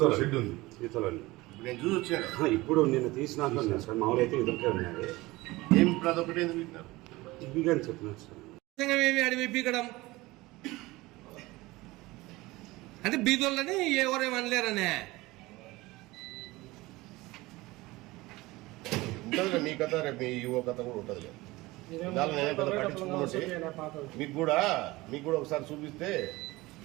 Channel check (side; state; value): left; quieter; 20.5 dB